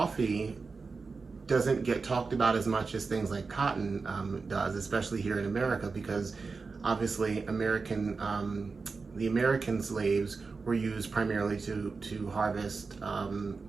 doesn't get talked about as much as things like cotton does, especially here in America, because obviously the American slaves were used primarily to harvest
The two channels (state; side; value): quieter; left; 4.5 dB